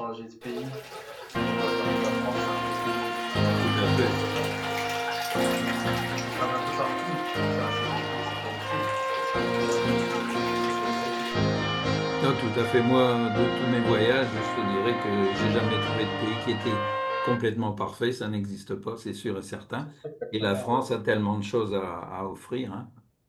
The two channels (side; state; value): both; identical; correlation 1.00